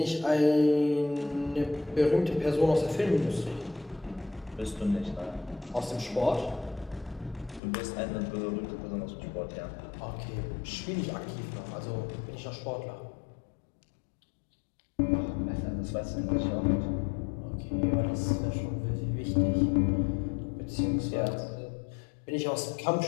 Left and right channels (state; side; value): drops out; right; at 7.6 s